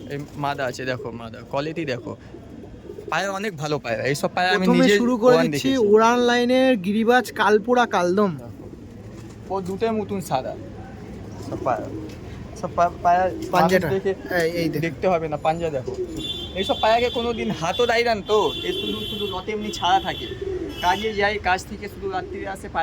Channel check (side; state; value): both; identical; correlation 1.00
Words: এই মাদা আছে, দেখো মাদা কোয়ালিটি দেখো, পায়রা অনেক ভালো পায়রা। এইসব পায়রা আমি প্রথমে নিজে শুরু করে দিচ্ছি উড়ান লাইনের গিরিবাজ কালপুরা কালদম। ও দুটোর মতন সাদা সব পায়রা, সব পায়রা পাঞ্জাটা দেখে এই দেখতে হবে না, পাঞ্জা দেখো। এইসব পায়রাকে কোনোদিন হাতও দেয় না তো, এ শুধু লতে এমনি ছাড়া থাকে, কাজে যাই, কাজ থেকে শুধু রাত্রিরে আসে